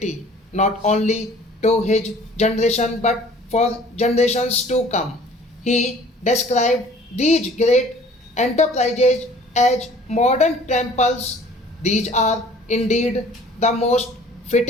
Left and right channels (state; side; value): normal; both; correlation 0.51